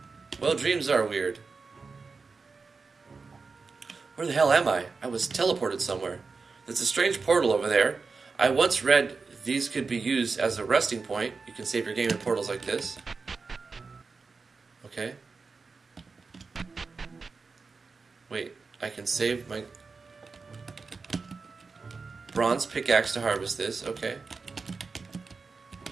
Well, dreams are weird. Where the hell am I? I was teleported somewhere. There's a strange portal over there. I once read these could be used as a resting point. You can save your game in portals like this. Okay. Wait, I can save my bronze pickaxe to harvest this. Okay.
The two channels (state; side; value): quieter; left; 4.5 dB